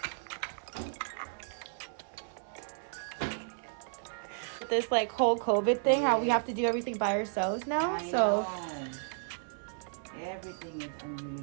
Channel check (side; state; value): left; silent; 56 dB below the other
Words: this like whole COVID thing, how we have to do everything by ourselves now. So everything is